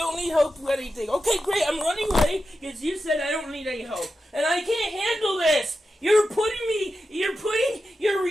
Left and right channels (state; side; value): normal; both; correlation 0.90